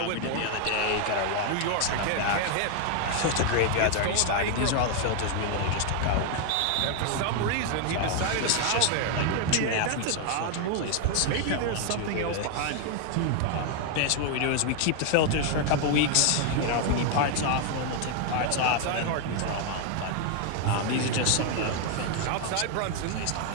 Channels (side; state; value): both; different; correlation 0.00